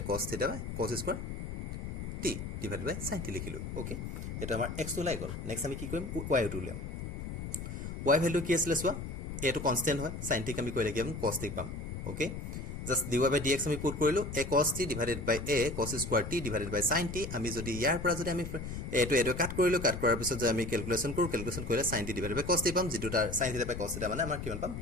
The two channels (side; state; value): left; noise; rumble, 6 dB below the sound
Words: cos থিটা cos square t divided by sin t লিখিলো ওকে এটা আমাৰ x টো লাই গল নেক্সট আমি কি কৰিম y টো উলিয়াম y ভ্যালু কি আছিল সোৱা এটো কনস্ট্যান্ট হয় sin t আমি কইলে কি আমি cos t পাম ওকে জাস্ট dy/dx আমি পুট কৰিলো a cos t divided by a cos square t divided by sin t আমি যদি ইয়াৰ পৰা যদি আমি এটো কাট কৰিলো কাট কৰাৰ পিছত যে আমি ক্যালকুলেশন কৰিলে sin t divided by cos t পাম যেটো তাৰ sin theta by cos theta মানে আমাৰ কিমান পাম